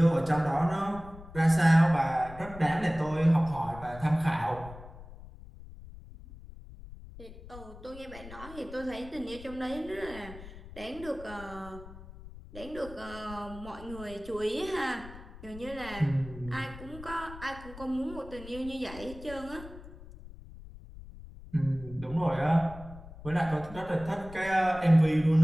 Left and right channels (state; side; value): noise; left; rumble, 16 dB below the sound